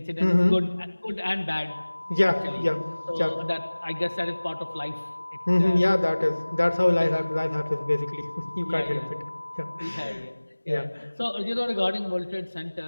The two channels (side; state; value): both; inverted; correlation -1.00